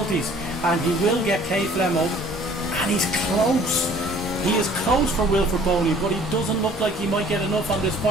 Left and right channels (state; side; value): normal; both; correlation 0.53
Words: and he will get K Flemo, and he's close. He is close for Wilfred Boney, but he doesn't look like he might get enough on this